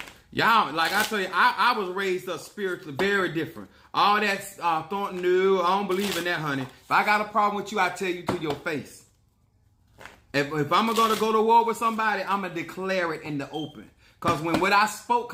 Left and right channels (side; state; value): both; identical; correlation 1.00